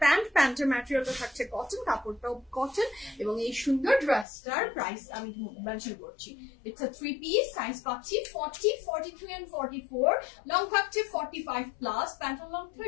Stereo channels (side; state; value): right; drops out; at 4.2 s